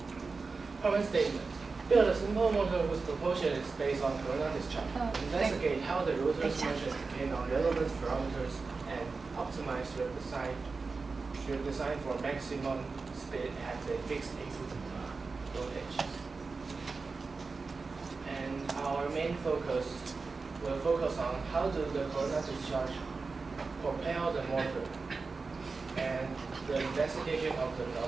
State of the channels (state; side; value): quieter; left; 4.2 dB